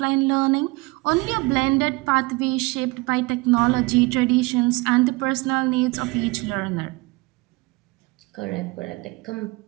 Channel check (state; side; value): quieter; left; 24.4 dB